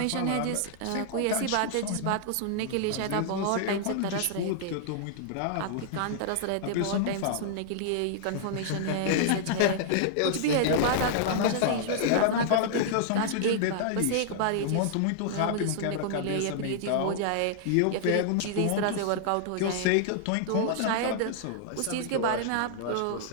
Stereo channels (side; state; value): both; different; correlation -0.01